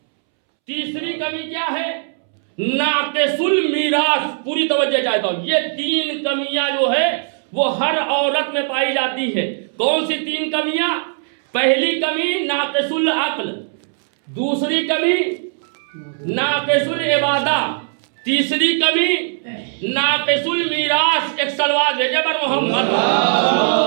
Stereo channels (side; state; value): left; silent; 66 dB below the other